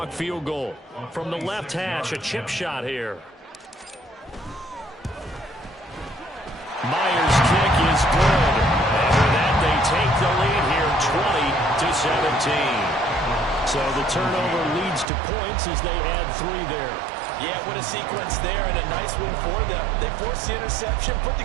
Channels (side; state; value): left; drops out; at 15.1 s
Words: field goal. From the left hash, a chip shot here. Myers' kick is good. After that, they take the lead here 20-17. So the turnover leads to points as they add 3 there. Yeah, what a sequence there and a nice one for them. They force the interception, put